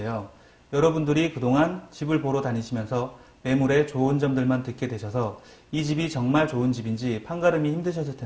여러분들이 그동안 집을 보러 다니시면서 매물의 좋은 점들만 듣게 되셔서 이 집이 정말 좋은 집인지 판가름이 힘드셨을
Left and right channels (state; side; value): identical; both; correlation 1.00